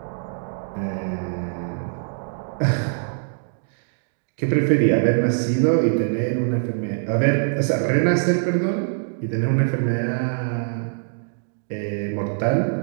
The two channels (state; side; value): silent; left; digital silence